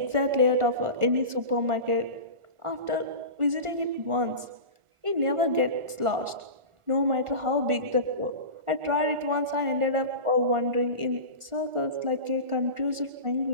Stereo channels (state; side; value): late; left; 1.4 ms